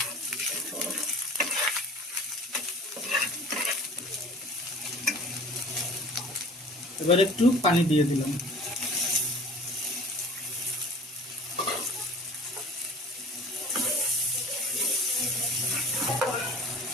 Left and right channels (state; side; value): normal; both; correlation 0.45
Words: এবার একটু পানি দিয়ে দিলাম।